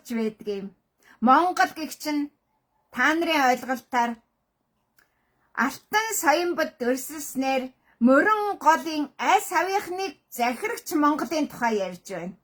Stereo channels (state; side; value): identical; both; correlation 1.00